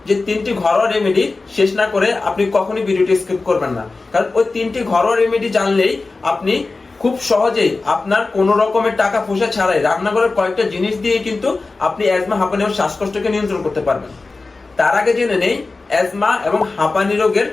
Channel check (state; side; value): quieter; right; 3.7 dB